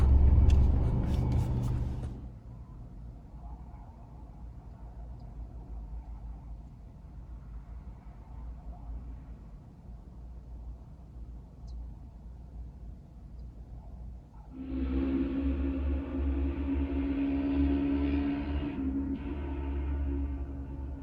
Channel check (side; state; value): both; identical; correlation 1.00